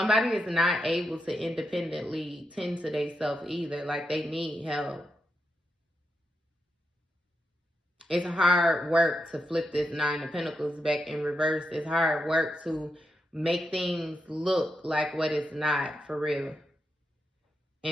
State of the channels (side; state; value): both; normal; correlation 0.85